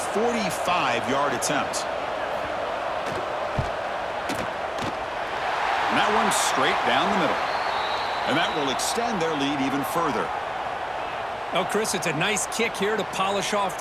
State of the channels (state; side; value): identical; both; correlation 1.00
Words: 45-yard attempt. And that one's straight down the middle. And that will extend their lead even further. Oh, Chris, it's a nice kick here to polish off